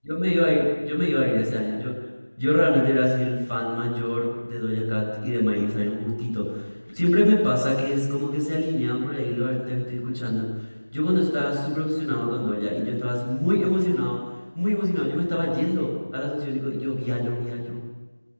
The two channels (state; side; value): inverted; both; correlation -1.00